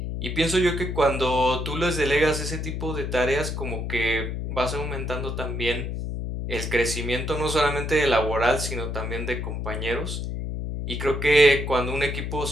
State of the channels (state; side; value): noise; left; hum, 4 dB below the sound